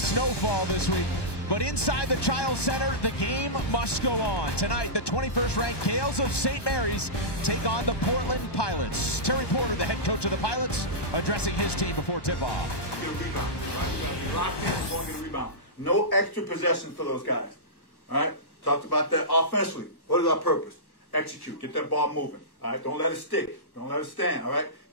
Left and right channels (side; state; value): right; late; 1.2 ms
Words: this week. But inside the Chiles Center, the game must go on. Tonight, the 21st ranked Gales of St. Mary's take on the Portland Pilots. Terry Porter, the head coach of the Pilots, addressing his team before tip-off. Get a rebound. No extra possession for those guys. All right? Talked about that offensively. What is our purpose? Execute. Get that ball moving. All right? Don't let it stick. Don't let it stand. All right?